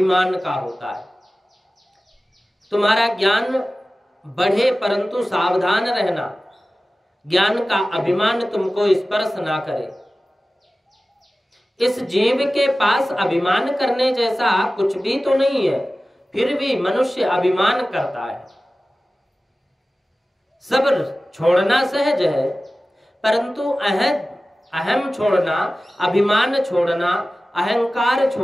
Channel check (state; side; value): normal; both; correlation 0.96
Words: का होता है। तुम्हारा ज्ञान बढ़े परंतु सावधान रहना, ज्ञान का अभिमान तुमको स्पर्श ना करे। इस जीव के पास अभिमान करने जैसा कुछ भी तो नहीं है, फिर भी मनुष्य अभिमान करता है। सब्र छोड़ना सहज है परंतु अहम छोड़ना, अभिमान छोड़ना, अहंकार